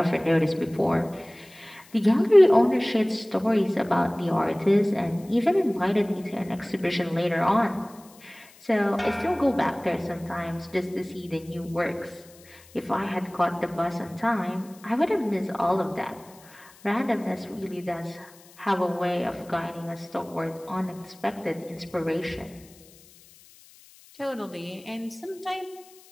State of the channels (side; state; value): left; noise; hiss, 25 dB below the sound